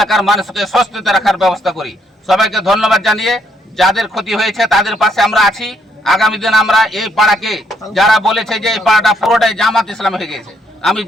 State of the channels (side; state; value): both; normal; correlation 0.72